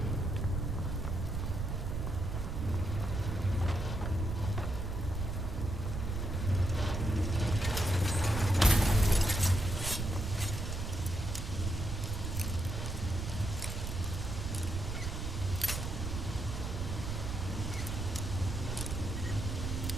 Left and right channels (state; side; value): noise; right; rumble, 3 dB below the sound